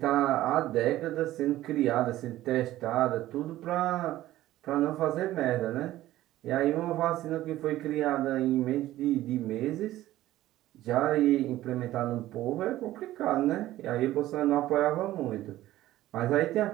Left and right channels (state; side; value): quieter; left; 15.0 dB